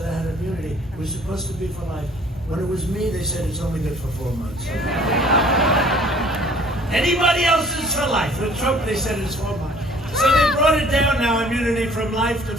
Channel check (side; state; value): both; normal; correlation 0.54